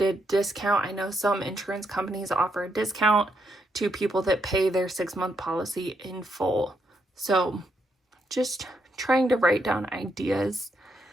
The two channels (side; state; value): both; normal; correlation 0.78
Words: a discount. I know some insurance companies offer a discount to people that pay their 6-month policy in full. So just trying to write down ideas.